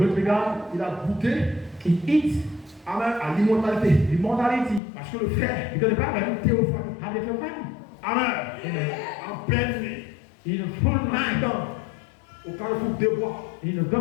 to be God. Il a goûté, He eats amen, à l'immortalité. immortality. Parce que le fer, Because the Bible théophanie. have the theophany. Amen. En pleine nuit. In a full night. Au carrefour des bois. In a good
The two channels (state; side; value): drops out; right; at 4.8 s